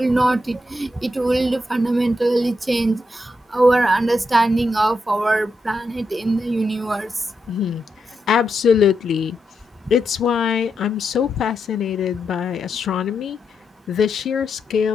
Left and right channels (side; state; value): both; normal; correlation 0.84